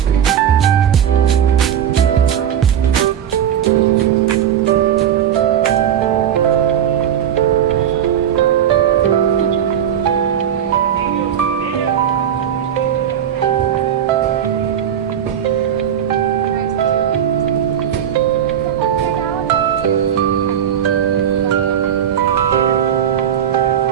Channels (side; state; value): left; quieter; 9.5 dB